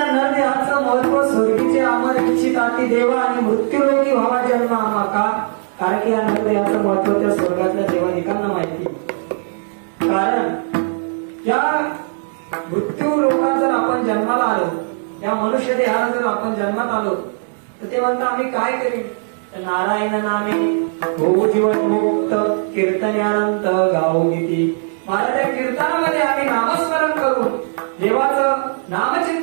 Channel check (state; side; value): silent; left; digital silence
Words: नरदेहाचं महत्व स्वर्गीचे अमर इच्छित अति देवा आणि मृत्यूरोगी व्हावा जन्म आम्हा का, कारण की या नरदेहाचं महत्व त्या स्वर्गातल्या देवादिकांना माहिती. कारण या मृत्यू लोकात जर आपण जन्माला आलो, या मनुष्य देहात जर आपण जन्मात आलो, तर ते म्हणतात आम्ही काय करीन. तर नारायण नामे हो जीवन मुक्त कीर्तनानंत गाऊ गीती. महाराज या कीर्तनामध्ये आम्ही नामस्मरण करून देवाचं